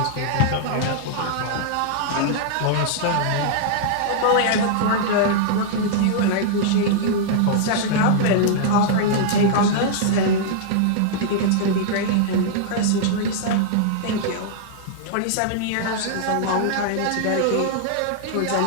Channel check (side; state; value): both; different; correlation -0.01